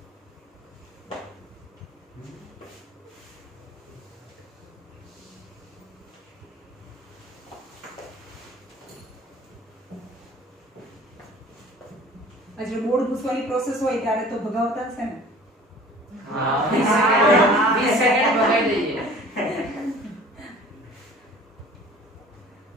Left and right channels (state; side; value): normal; both; correlation 0.47